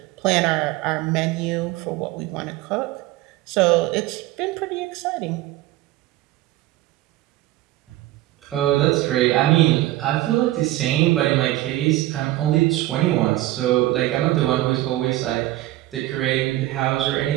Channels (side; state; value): left; quieter; 16.3 dB